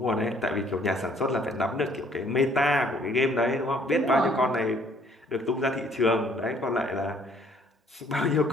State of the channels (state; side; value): normal; both; correlation 0.61